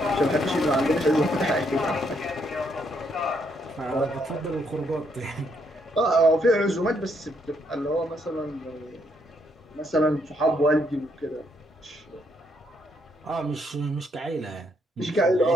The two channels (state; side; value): normal; both; correlation 0.73